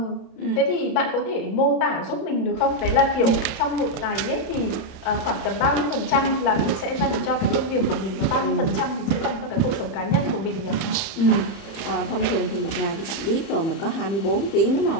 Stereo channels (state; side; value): late; right; 30 ms